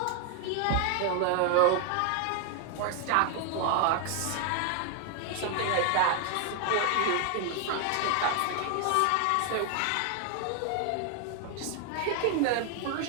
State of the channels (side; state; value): both; different; correlation 0.00